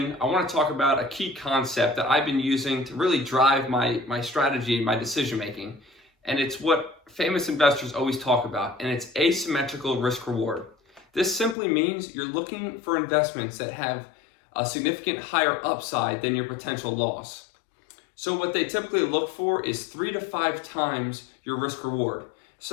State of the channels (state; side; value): drops out; right; at 11.6 s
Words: I want to talk about a key concept that I've been using to really drive my strategy, my decision making, and it's what famous investors always talk about, and it's asymmetrical risk reward. This simply means you're looking for investments that have a significant higher upside than your potential loss. So what they typically look for is 3 to 5 times your risk reward.